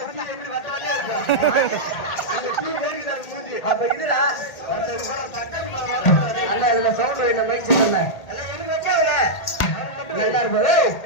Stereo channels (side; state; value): right; late; 1.8 ms